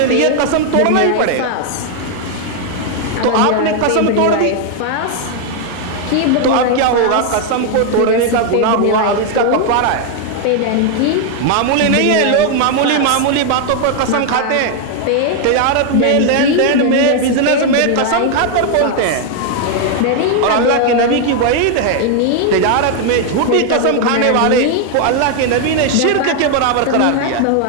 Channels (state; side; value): different; both; correlation 0.00